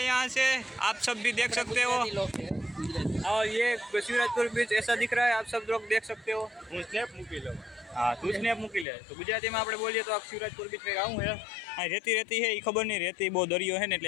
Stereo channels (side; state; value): right; drops out; at 8.8 s